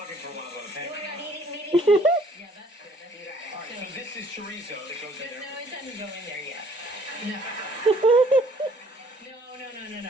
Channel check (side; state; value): both; normal; correlation 0.58